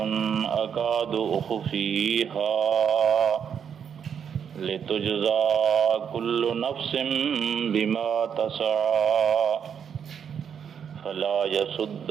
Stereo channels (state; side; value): quieter; left; 7.7 dB